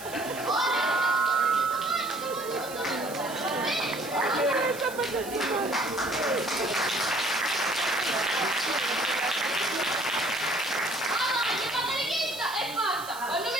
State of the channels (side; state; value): right; noise; hiss, 14 dB below the sound